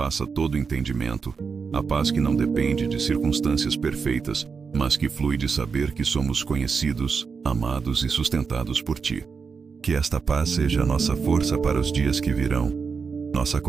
todo entendimento, a paz que não depende de circunstâncias perfeitas, mas que flui de saber que somos conhecidos, amados e sustentados por Ti. Que esta paz seja a nossa força para os dias que virão, nossa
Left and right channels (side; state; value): left; quieter; 5.4 dB